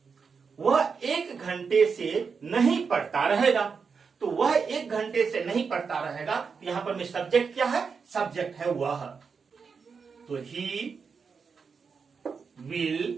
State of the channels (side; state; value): left; quieter; 5.6 dB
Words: वह 1 घंटे से नहीं पढ़ता रहेगा। तो वह 1 घंटे से नहीं पढ़ता रहेगा। यहां पर में सब्जेक्ट क्या है? सब्जेक्ट है वह। तो ही